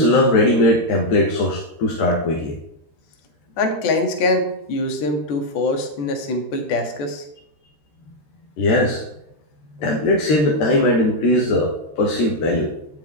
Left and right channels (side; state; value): right; late; 14 ms